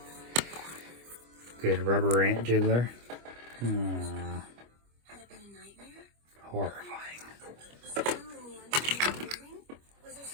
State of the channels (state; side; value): late; left; 25 ms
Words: Good rubber ant jiggler. Horrifying.